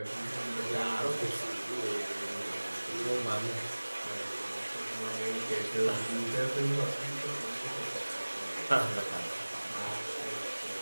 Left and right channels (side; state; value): both; inverted; correlation -1.00